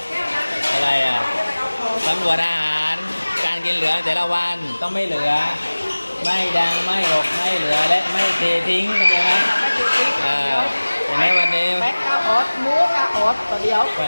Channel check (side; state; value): both; inverted; correlation -1.00